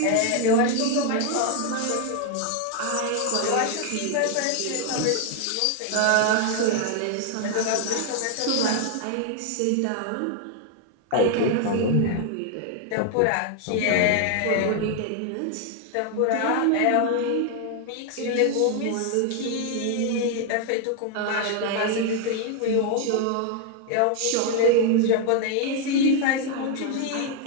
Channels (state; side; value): different; both; correlation 0.00